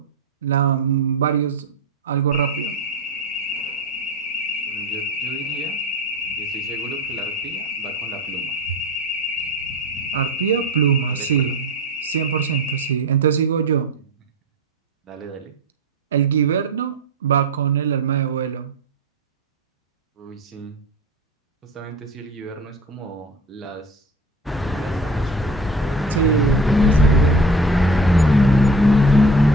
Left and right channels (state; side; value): normal; both; correlation 0.35